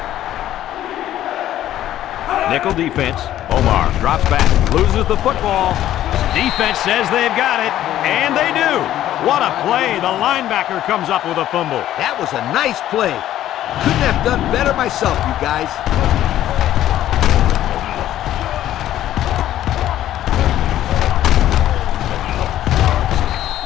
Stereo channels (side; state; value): right; quieter; 12.7 dB